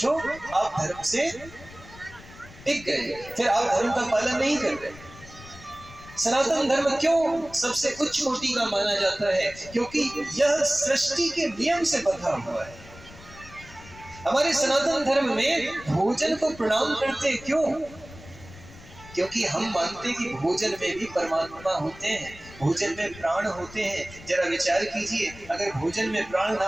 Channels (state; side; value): noise; left; rumble, 19 dB below the sound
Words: आप धर्म से टिक गए, फिर आप धर्म का पालन नहीं कर रहे। सनातन धर्म क्यों सबसे उच्च कोटि का माना जाता है? क्योंकि यह सृष्टि के नियम से बंधा हुआ है। हमारे सनातन धर्म में भोजन को प्रणाम करते क्यों? क्योंकि हम मानते हैं कि भोजन में भी परमात्मा होते हैं, भोजन में प्राण होते हैं। जरा विचार कीजिए, अगर भोजन में प्राण ना